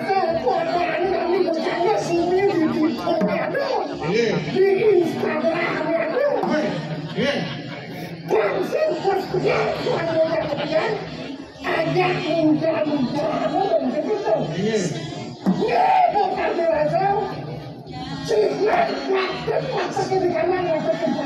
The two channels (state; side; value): identical; both; correlation 1.00